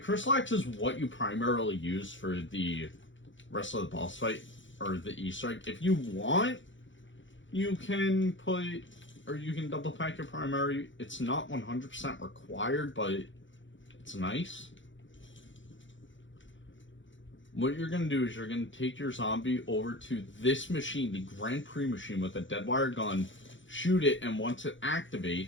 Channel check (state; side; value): late; right; 0.55 ms